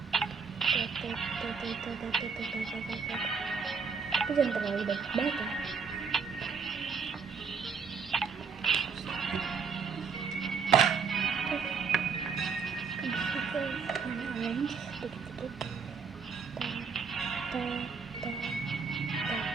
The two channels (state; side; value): quieter; left; 5.7 dB